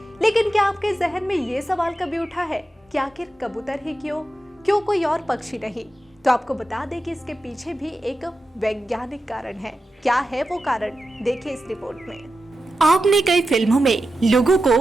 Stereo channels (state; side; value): normal; both; correlation 0.91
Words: लेकिन क्या आपके जहन में ये सवाल कभी उठा है कि आखिर कबूतर ही क्यों कोई और पक्षी नहीं? तो आपको बता दें कि इसके पीछे भी एक वैज्ञानिक कारण है। क्या है वो कारण, देखिए इस रिपोर्ट में। आपने कई फिल्मों में लोगों